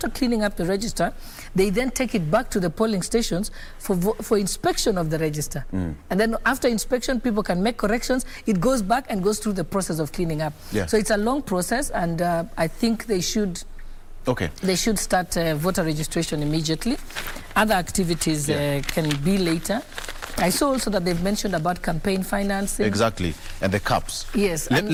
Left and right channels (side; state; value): both; identical; correlation 1.00